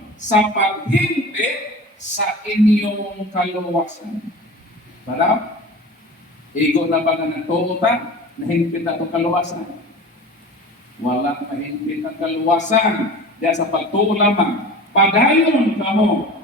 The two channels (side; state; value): both; normal; correlation 0.36